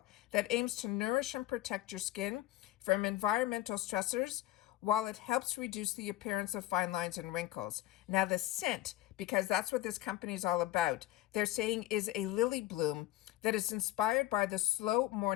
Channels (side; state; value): right; quieter; 15.1 dB